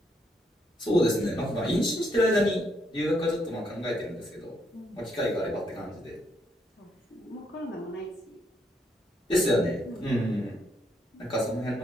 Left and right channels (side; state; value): both; normal; correlation 0.75